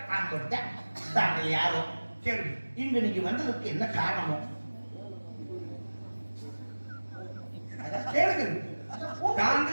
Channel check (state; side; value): inverted; both; correlation -1.00